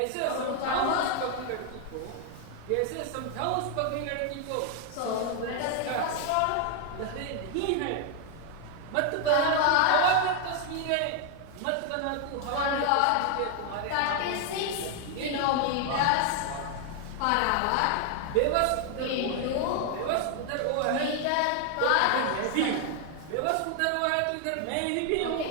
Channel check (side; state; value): both; different; correlation 0.00